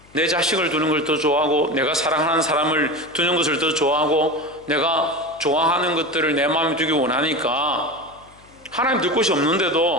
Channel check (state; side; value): noise; left; hum, 27 dB below the sound